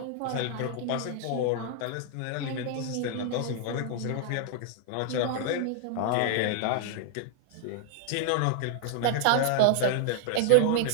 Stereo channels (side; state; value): both; different; correlation -0.01